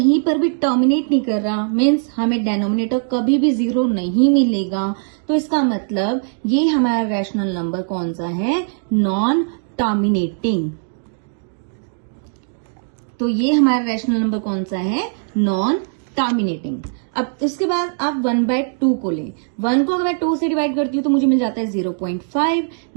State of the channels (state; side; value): silent; left; 66 dB below the other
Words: पर भी टर्मिनेट नहीं कर रहा, मीन्स हमें डिनोमिनेटर कभी भी 0 नहीं मिलेगा। तो इसका मतलब ये हमारा रैशनल नंबर कौन सा है, नॉन टर्मिनेटिंग। तो ये हमारा रैशनल नंबर कौन सा है, नॉन टर्मिनेटिंग। अब इसके बाद आप 1/2 को लें, 1 को अगर मैं 2 से डिवाइड करती हूँ तो मुझे मिल जाता है 0.5,